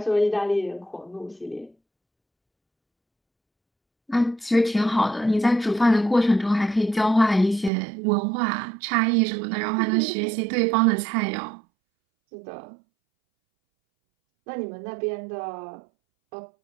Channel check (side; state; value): left; drops out; at 7.7 s